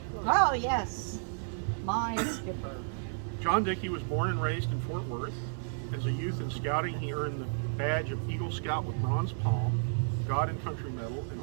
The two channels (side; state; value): left; silent; digital silence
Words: Oh, yes. My skipper. John Dickey was born and raised in Fort Worth. As a youth in scouting, he earned the badge of Eagle Scout with Bronze Palm, God and Country Medal, and